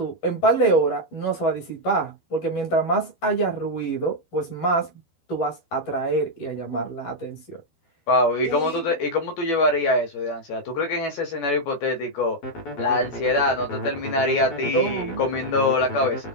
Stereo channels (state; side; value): late; right; 12 ms